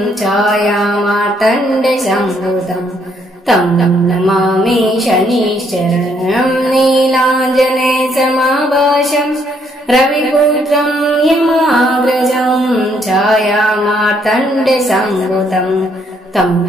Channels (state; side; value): normal; both; correlation 0.70